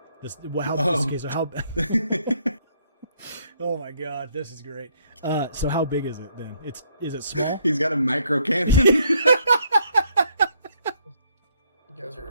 Okay, so how Oh my god, this is great. So how big is it then? Is it small? He's got a micro cannon. You guys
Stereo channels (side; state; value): both; inverted; correlation -0.69